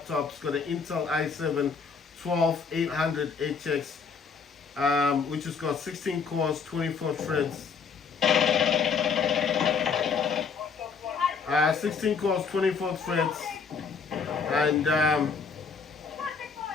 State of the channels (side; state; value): right; quieter; 5.5 dB